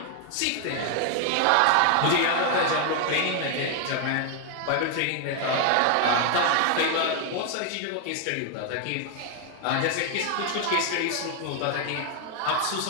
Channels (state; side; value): different; both; correlation 0.00